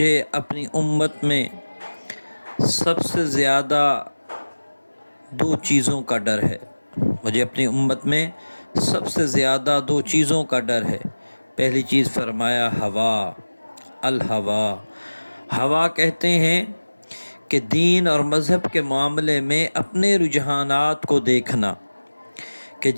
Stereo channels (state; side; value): inverted; both; correlation -1.00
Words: اپنی امت میں سب سے زیادہ دو چیزوں کا ڈر ہے۔ مجھے اپنی امت میں سب سے زیادہ دو چیزوں کا ڈر ہے۔ پہلی چیز فرمایا ہوا، الہوا۔ ہوا کہتے ہیں کہ دین اور مذہب کے معاملے میں اپنے رجحانات کو دیکھنا، کہ